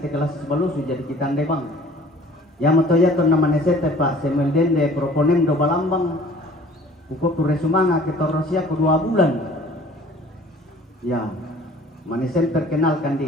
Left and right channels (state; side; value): normal; both; correlation 0.51